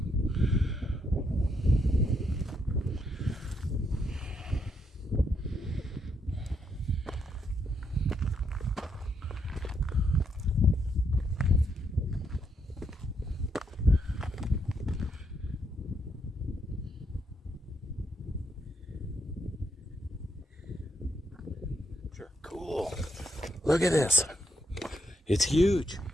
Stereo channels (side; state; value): both; normal; correlation 0.78